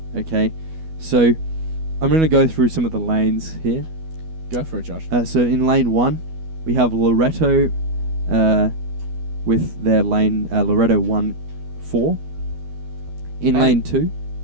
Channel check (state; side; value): late; left; 12 ms